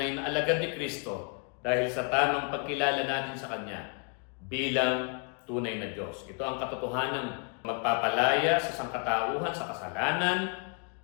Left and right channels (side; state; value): right; quieter; 37.0 dB